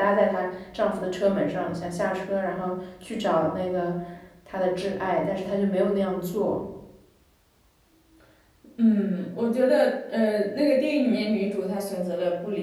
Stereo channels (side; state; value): both; identical; correlation 1.00